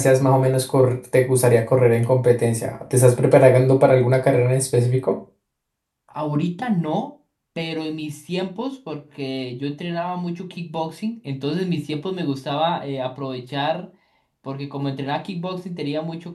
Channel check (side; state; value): both; identical; correlation 1.00